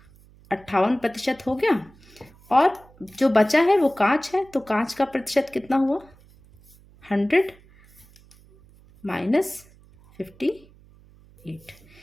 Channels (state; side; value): noise; right; hum, 27 dB below the sound